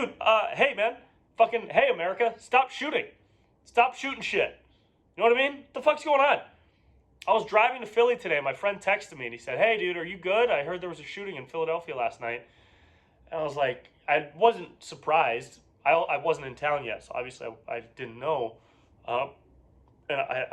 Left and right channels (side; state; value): both; identical; correlation 1.00